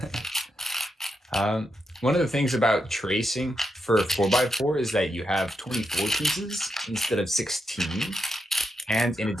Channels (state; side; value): normal; both; correlation 0.84